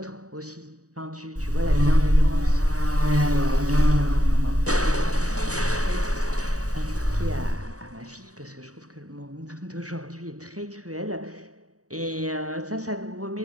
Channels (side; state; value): left; late; 0.66 ms